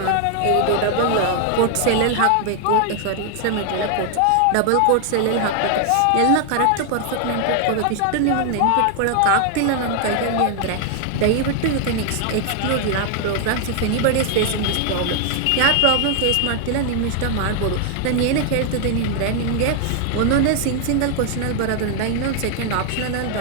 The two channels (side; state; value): both; different; correlation 0.00